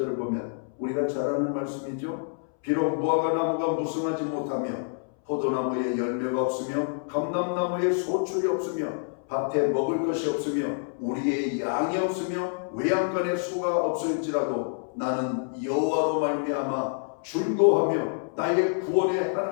보면 우리가 잘 아는 말씀이죠. 비록 무화과 나무가 무성하지 못하며 포도나무에 열매가 없으며 감람나무에 소출이 없으며 밭에 먹을 것이 없으며 우리의 양이 없으며 외양간에 소가 없을지라도 나는 여호와로 말미암아 즐거워하며 나의 구원의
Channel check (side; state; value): right; silent; 60 dB below the other